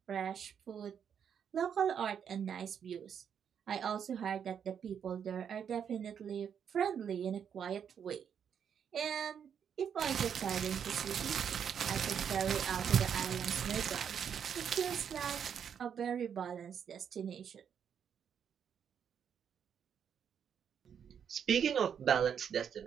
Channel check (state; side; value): quieter; left; 7.9 dB